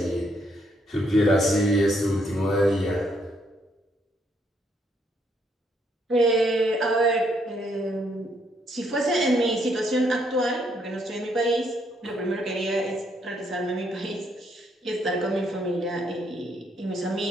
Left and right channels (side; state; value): both; normal; correlation 0.72